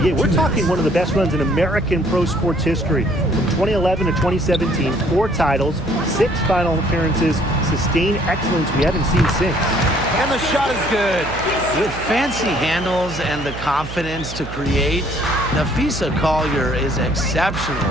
we're talking one of the best runs in American pro sports history. From 2011 to 2017, 4 titles, 6 final appearances, sustained excellence we haven't seen since. And the shot is good. With fancy handles and the confidence to create, Napheesa Collier is exceptional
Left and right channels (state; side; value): noise; right; hum, 11 dB below the sound